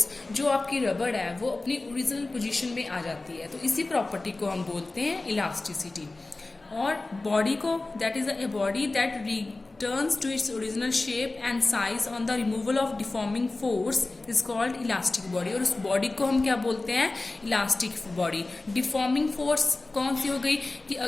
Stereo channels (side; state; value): right; quieter; 3.2 dB